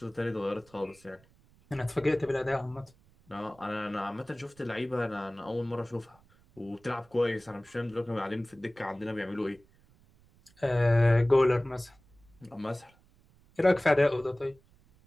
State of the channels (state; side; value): noise; right; rumble, 30 dB below the sound